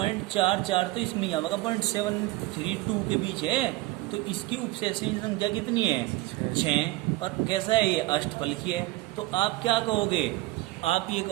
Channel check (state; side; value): quieter; left; 19.2 dB